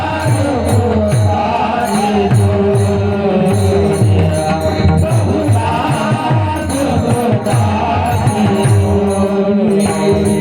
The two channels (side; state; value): both; identical; correlation 1.00